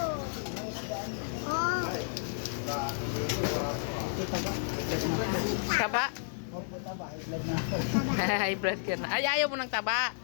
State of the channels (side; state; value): right; silent; 57 dB below the other